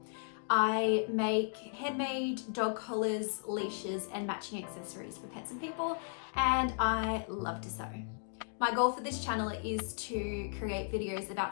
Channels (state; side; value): silent; right; digital silence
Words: I make handmade dog collars, leashes and matching accessories for pets and people, and I love to sew. My goal for this channel is to create videos